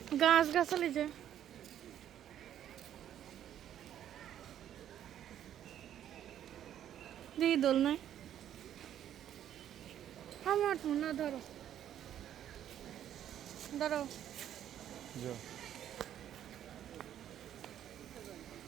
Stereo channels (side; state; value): left; quieter; 10.7 dB